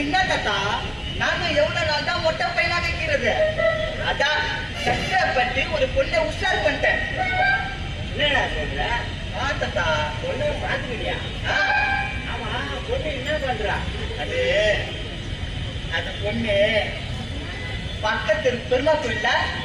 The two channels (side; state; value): both; identical; correlation 1.00